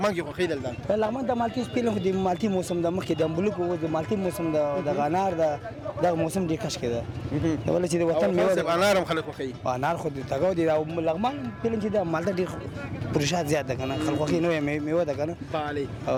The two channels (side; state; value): both; identical; correlation 1.00